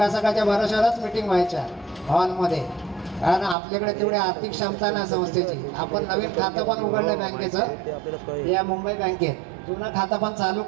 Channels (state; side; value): drops out; left; at 3.6 s